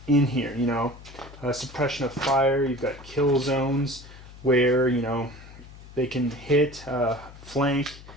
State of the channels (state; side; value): noise; left; hum, 18 dB below the sound